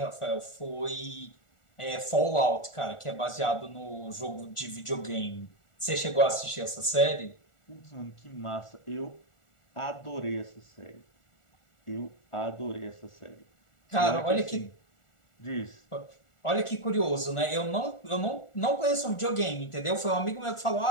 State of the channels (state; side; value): late; right; 1.4 ms